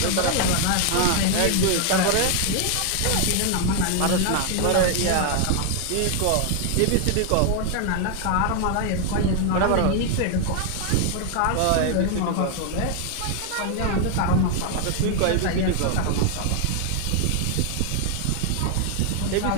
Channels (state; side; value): different; both; correlation 0.00